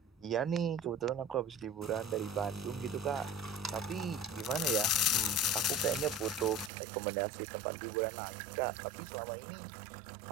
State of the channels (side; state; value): left; drops out; at 6.7 s